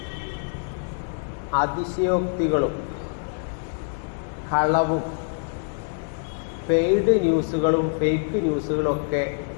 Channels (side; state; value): right; silent; digital silence